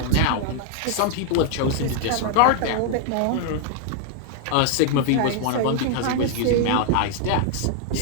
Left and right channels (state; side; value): different; both; correlation 0.00